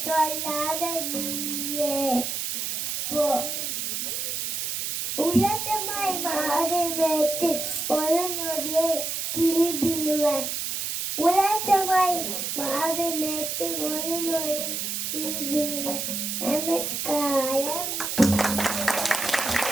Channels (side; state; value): right; noise; hiss, 2 dB below the sound